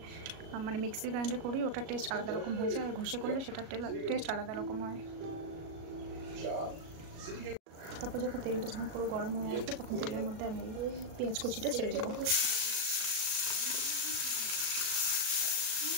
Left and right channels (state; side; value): late; left; 37 ms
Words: মানে মিক্সির গ্রাইন্ডার করি ওটা টেস্ট আলাদা রকম হয়ে যায়, আর ঘষে করলে সেটা টেস্ট আলাদা রকম হয়। তারপর তেলটা যখন পুরো গরম হয়ে আসবে তখন তেলের মধ্যে আমি পেঁয়াজ কুচিটা ছেড়ে দেবো।